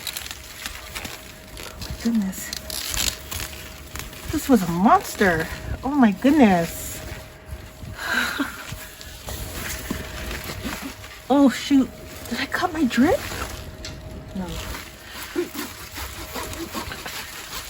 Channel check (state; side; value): identical; both; correlation 1.00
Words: Oh my goodness. This was a monster. Oh my goodness. Oh shoot. Did I cut my drip? No.